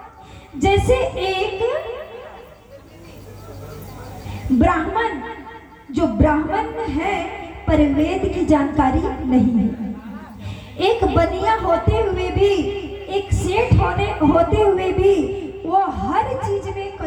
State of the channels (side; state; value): both; identical; correlation 1.00